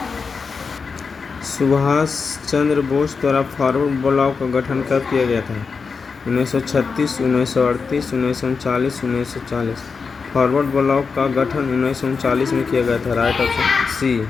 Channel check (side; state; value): right; quieter; 5.1 dB